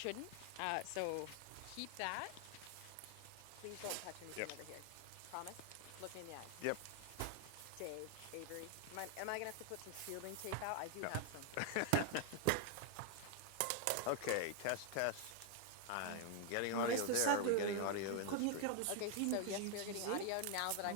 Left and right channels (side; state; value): both; different; correlation 0.00